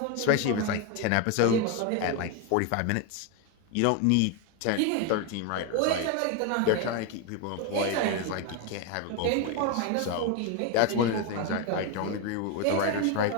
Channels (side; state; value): both; different; correlation 0.01